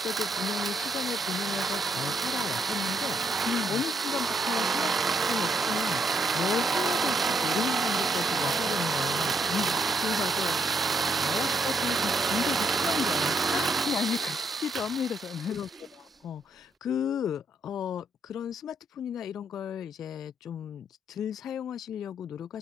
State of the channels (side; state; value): both; normal; correlation 0.74